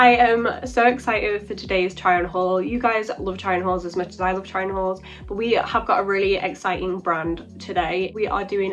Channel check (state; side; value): identical; both; correlation 1.00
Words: am so excited for today's try on haul. You guys love try on hauls as much as I love try on hauls, but we have got a really exciting brand today. We are doing